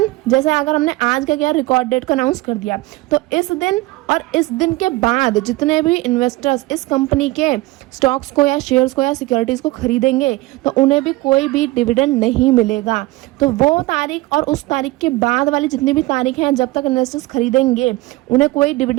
जैसे अगर हमने आज का क्या रिकॉर्ड डेट को अनाउंस कर दिया, तो इस दिन और इस दिन के बाद जितने भी इन्वेस्टर्स इस कंपनी के स्टॉक्स को या शेयर्स को या सिक्योरिटीज़ को खरीदेंगे, तो उन्हें भी कोई भी डिविडेंड नहीं मिलेगा। तो वो तारीख और उस तारीख के बाद वाली जितनी भी तारीख हैं जब तक इन्वेस्टर्स खरीदेंगे, उन्हें कोई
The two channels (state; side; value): quieter; left; 19.9 dB